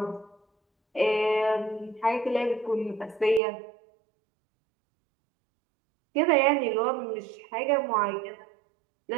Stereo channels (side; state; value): left; drops out; at 3.4 s